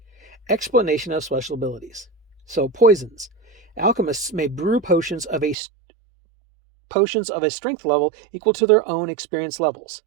Explanation of special abilities. So, poisons. Alchemists may brew potions of a strength level equal to their own experience levels.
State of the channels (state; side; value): drops out; left; at 5.6 s